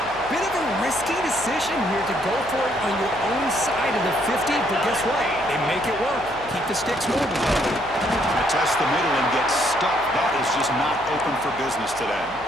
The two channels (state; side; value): noise; left; hum, 20 dB below the sound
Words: Bit of a risky decision here to go for it on your own side of the 50, but guess what? They make it work. Keep the sticks moving. To test the middle and get stuck. That is just not open for business today.